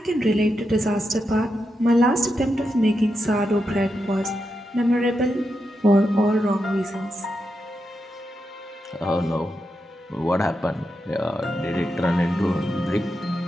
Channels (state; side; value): normal; both; correlation 0.86